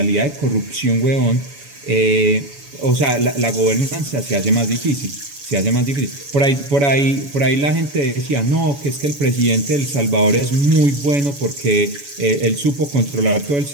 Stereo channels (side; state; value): left; late; 7.1 ms